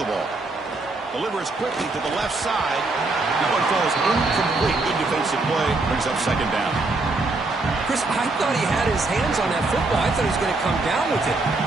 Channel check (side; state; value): left; quieter; 3.3 dB